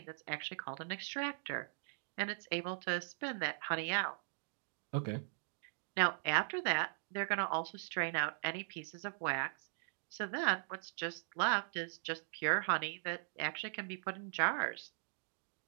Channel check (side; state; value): left; silent; digital silence